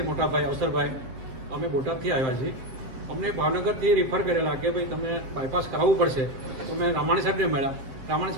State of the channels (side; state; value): left; late; 7.6 ms